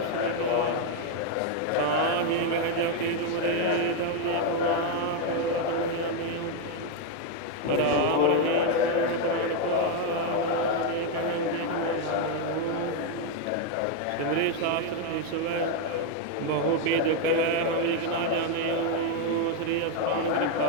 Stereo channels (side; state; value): both; different; correlation 0.01